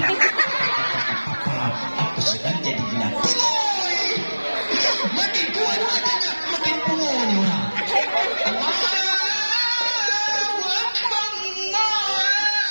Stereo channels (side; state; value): both; inverted; correlation -1.00